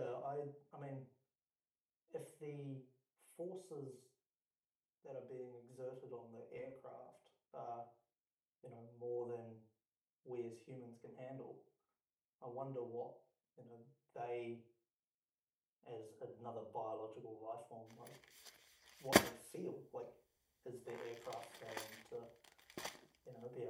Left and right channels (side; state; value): both; identical; correlation 1.00